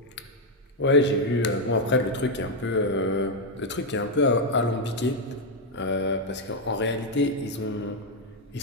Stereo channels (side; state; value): both; normal; correlation 0.02